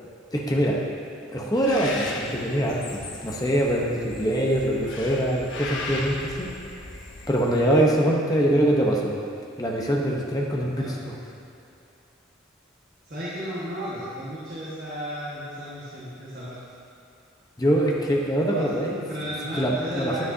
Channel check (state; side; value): normal; both; correlation 0.60